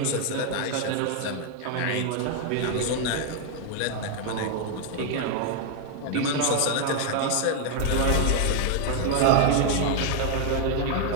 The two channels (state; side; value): different; both; correlation 0.01